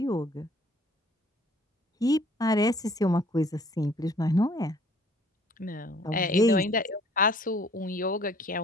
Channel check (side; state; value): both; normal; correlation 0.57